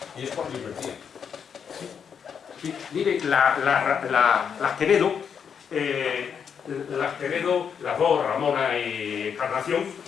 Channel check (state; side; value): quieter; right; 7.2 dB